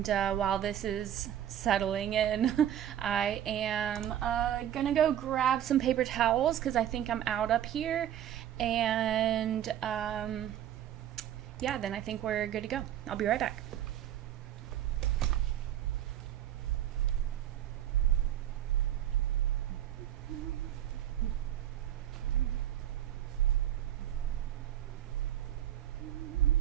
while this is settling in, I am gonna go grab some paper towels because I think I'm out up here. And yeah, then I think we're good to go. I'll be right back.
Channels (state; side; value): quieter; left; 11.0 dB